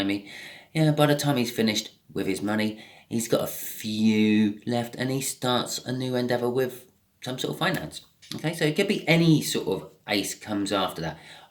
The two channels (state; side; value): identical; both; correlation 1.00